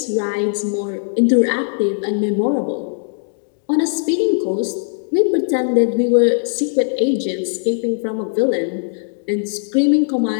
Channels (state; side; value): silent; right; digital silence